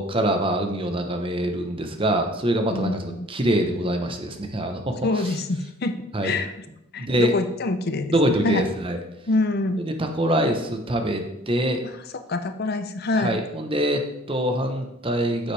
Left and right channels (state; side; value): normal; both; correlation 0.53